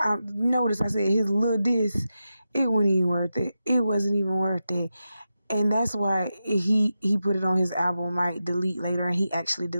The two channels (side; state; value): both; inverted; correlation -0.90